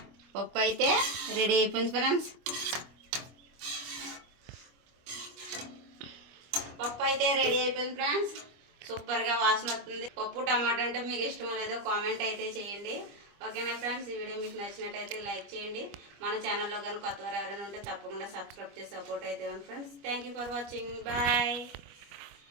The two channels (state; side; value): late; left; 25 ms